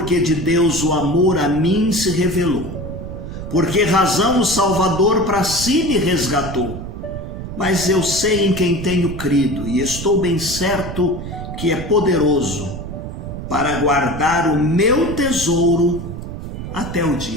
que de Deus o amor a mim se revelou, por que razão o Salvador para si me resgatou. Mas eu sei em quem tenho crido e estou bem certo que é poderoso para guardar o meu tesouro até o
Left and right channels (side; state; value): right; noise; rumble, 8 dB below the sound